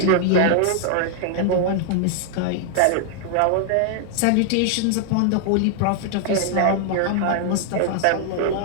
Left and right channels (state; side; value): different; both; correlation 0.00